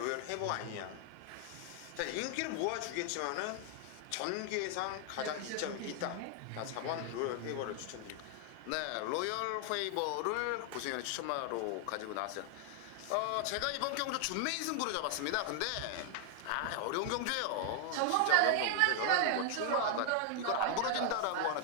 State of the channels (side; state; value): both; different; correlation 0.00